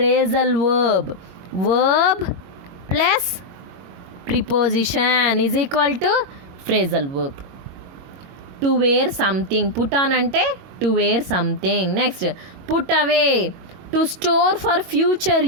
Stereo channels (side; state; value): left; late; 22 ms